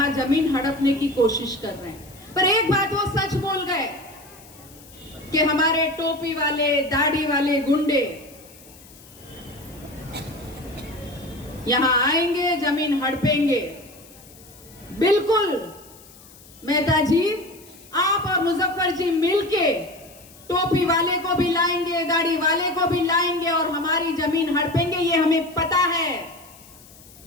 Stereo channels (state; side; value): noise; left; hiss, 22 dB below the sound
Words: जमीन हड़पने की कोशिश कर रहे हैं, पर एक बात वो सच बोल गए कि हमारे टोपी वाले, दाढ़ी वाले गुंडे यहां आएंगे, जमीन हड़पेंगे। बिल्कुल मेहता जी, आप और मुजफ्फर जी मिलके टोपी वाले को भी लाएंगे, दाढ़ी वाले को भी लाएंगे और हमारी जमीन हड़पेंगे, ये हमें पता है।